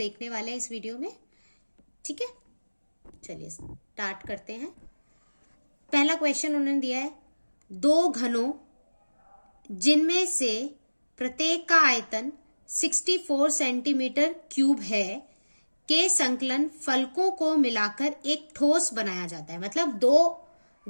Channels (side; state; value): both; inverted; correlation -1.00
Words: वाले हैं इस वीडियो में। ठीक है, चलिए स्टार्ट करते हैं। पहला क्वेश्चन उन्होंने दिया है, दो घनों जिनमें से प्रत्येक का आयतन 64 सेंटीमीटर क्यूब है के संकलन फलकों को मिलाकर एक ठोस बनाया जाता है। मतलब दो